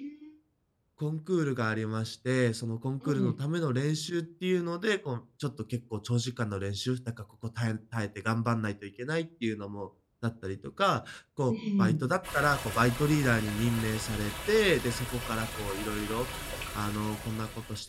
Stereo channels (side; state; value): both; identical; correlation 1.00